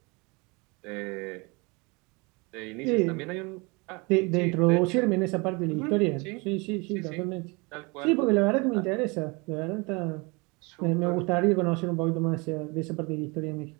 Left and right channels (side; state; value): left; quieter; 28.0 dB